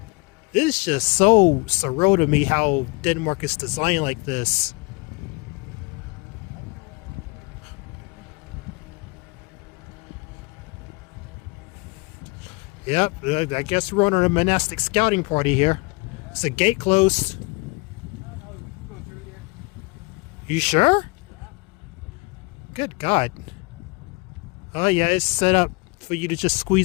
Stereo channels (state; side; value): quieter; right; 27.8 dB